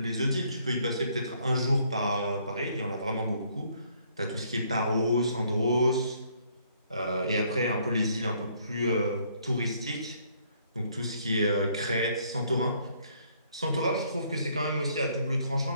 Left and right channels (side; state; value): both; inverted; correlation -0.66